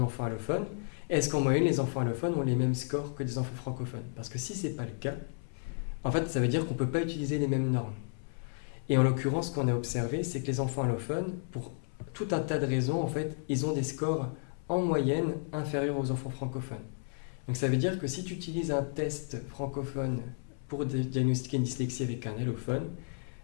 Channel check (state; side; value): silent; right; 56 dB below the other